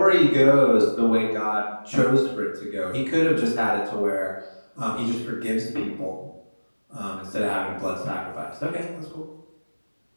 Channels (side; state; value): both; inverted; correlation -1.00